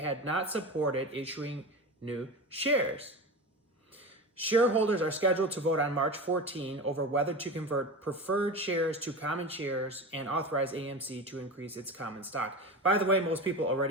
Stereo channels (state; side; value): normal; both; correlation 0.27